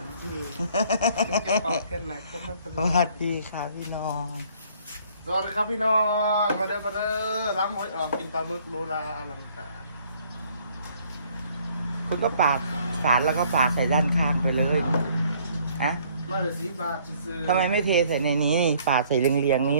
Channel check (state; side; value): inverted; both; correlation -0.61